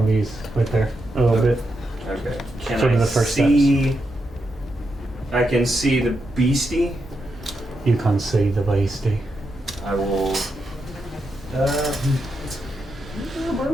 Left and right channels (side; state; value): both; normal; correlation 0.84